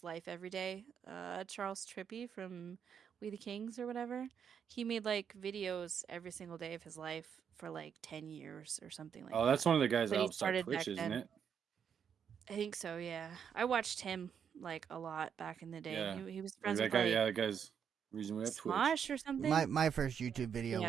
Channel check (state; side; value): quieter; left; 7.7 dB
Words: life every day, Charles Trippy from We the Kings or whatever, he made like videos every single day of his life for like 10 years or something like Oh, that. that's one of the guys But that he helped start started Twitch, back isn't then. it? I think so, yeah. I watched him like a lot back in the day. Yeah. He was Like friends that with guy, like yeah, that guy's the reason we have Twitch. Smosh or something. My first YouTube video Yeah.